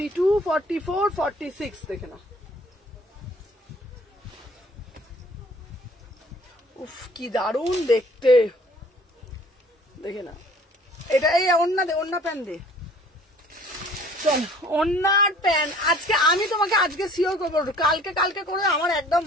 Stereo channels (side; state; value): both; normal; correlation 0.53